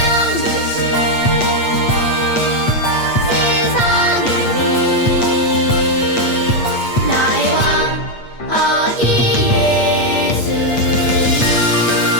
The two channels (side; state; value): right; late; 8.4 ms